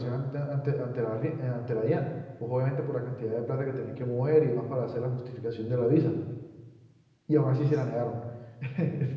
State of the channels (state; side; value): identical; both; correlation 1.00